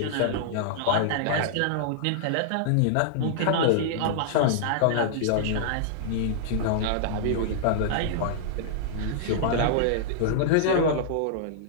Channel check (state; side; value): different; both; correlation -0.02